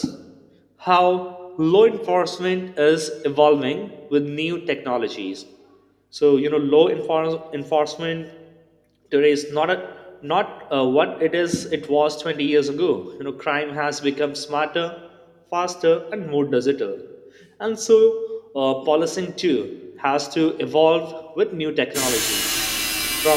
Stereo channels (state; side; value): identical; both; correlation 1.00